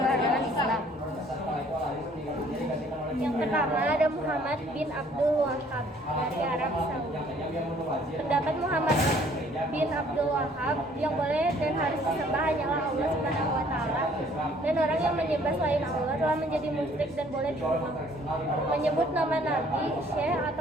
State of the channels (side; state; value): both; normal; correlation 0.59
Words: Islam. Yang pertama ada Muhammad bin Abdul Wahhab dari Arab Saudi. Pendapat Muhammad bin Abdul Wahhab yang boleh dan harus disembah hanyalah Allah Subhanahu wa taala, dan orang yang menyembah selain Allah telah menjadi musyrik dan boleh dibunuh. Menyebut nama nabi, syekh